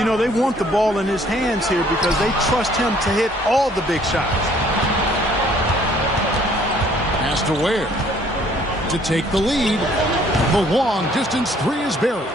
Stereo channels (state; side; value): normal; both; correlation 0.60